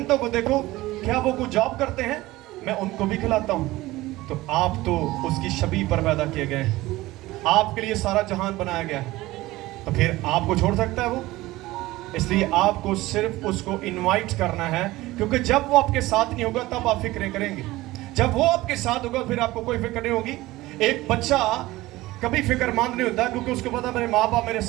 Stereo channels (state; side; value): quieter; left; 18.4 dB